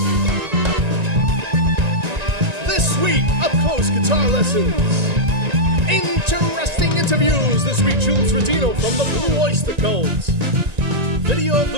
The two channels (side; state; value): left; late; 1.9 ms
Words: This week, up-close guitar lessons. Interesting interviews. This week, Jules Rodino from the Blue Oyster Cult. Video of